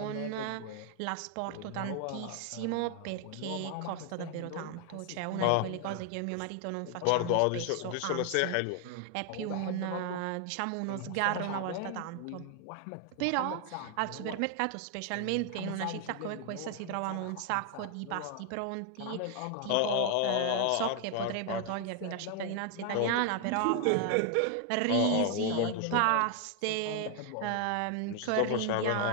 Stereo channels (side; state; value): both; different; correlation 0.00